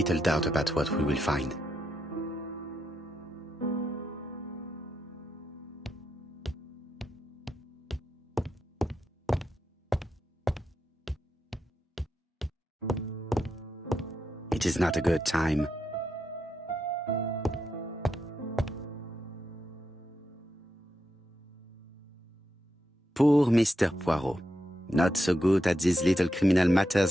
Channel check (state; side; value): normal; both; correlation 0.84